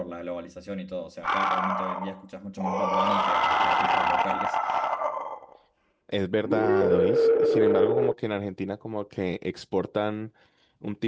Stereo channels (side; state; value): both; identical; correlation 1.00